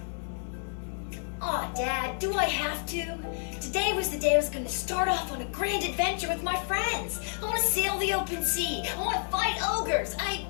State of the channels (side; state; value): right; silent; 58 dB below the other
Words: Oh, Dad, do I have to? Today was the day I was going to start off on a grand adventure with my friends. I want to sail the open sea. I want to fight ogres. I